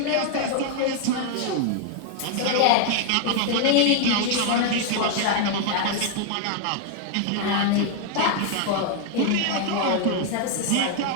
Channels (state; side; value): different; both; correlation 0.00